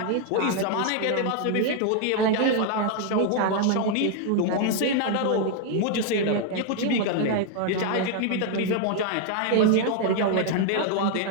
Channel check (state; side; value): different; both; correlation 0.00